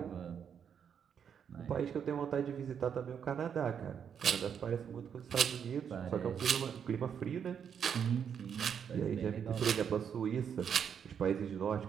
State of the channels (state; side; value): quieter; left; 7.8 dB